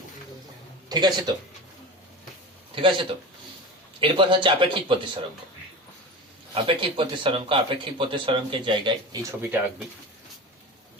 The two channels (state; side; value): normal; both; correlation 0.30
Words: ঠিক আছে তো, ঠিক আছে তো। এরপর হচ্ছে আপেক্ষিক প্রতিসরাঙ্ক। আপেক্ষিক প্রতিসরাঙ্ক, আপেক্ষিক প্রতিসরাঙ্কের জায়গায় এই ছবিটা আঁকবি।